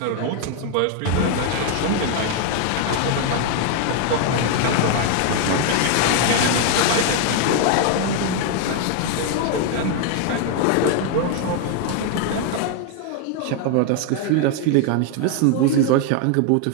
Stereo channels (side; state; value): both; different; correlation 0.01